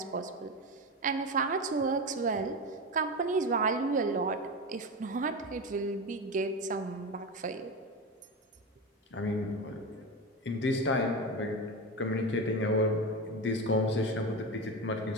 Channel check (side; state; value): both; normal; correlation 0.20